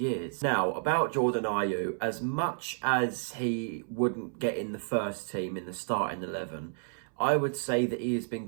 Now, about Jordan Ayew, as much as he wouldn't get in the first team in the starting 11, I would say that he has been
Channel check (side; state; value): left; silent; 57 dB below the other